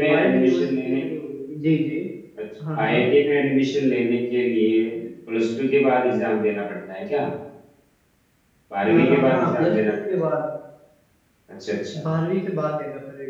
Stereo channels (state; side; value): identical; both; correlation 1.00